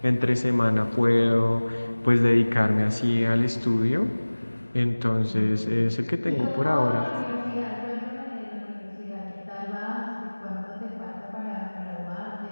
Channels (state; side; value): inverted; both; correlation -1.00